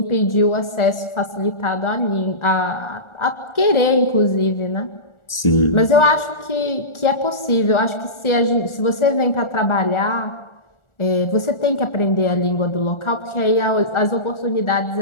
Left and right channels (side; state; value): right; late; 1.4 ms